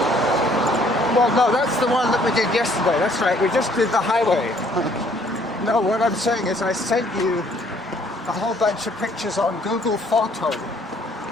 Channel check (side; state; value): both; normal; correlation 0.62